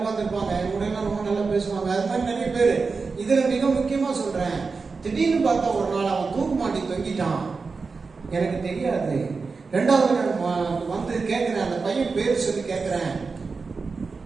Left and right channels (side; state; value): left; quieter; 4.5 dB